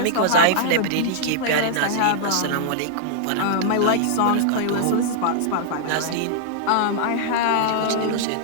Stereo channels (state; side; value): different; both; correlation -0.01